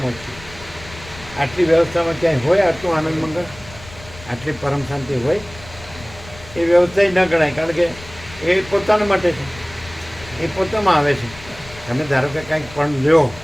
ઓછી આટલી વ્યવસ્થામાં ક્યાંય હોય આટલું આનંદ મંગળ, આટલી પરમ શાંતિ હોય એ વ્યવસ્થા ન ગણાય. કારણ કે એ પોતાના માટે છે. એ પોતામાં આવે છે. તમે ધારો કે કાંઈક પણ લ્યો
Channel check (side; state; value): left; noise; rumble, 18 dB below the sound